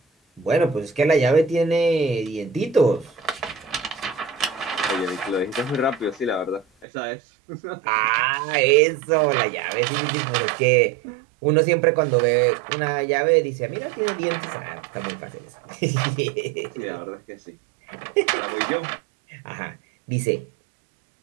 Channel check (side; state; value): left; drops out; at 6.9 s